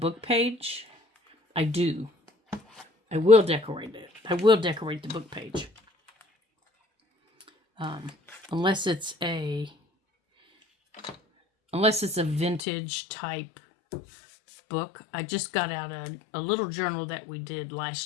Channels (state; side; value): drops out; right; at 12.6 s